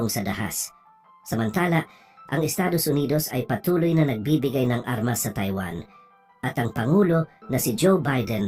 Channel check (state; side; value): identical; both; correlation 1.00